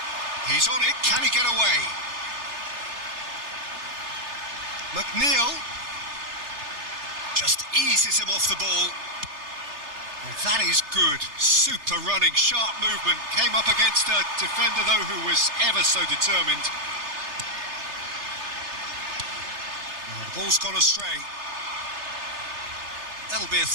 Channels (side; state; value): left; late; 3.3 ms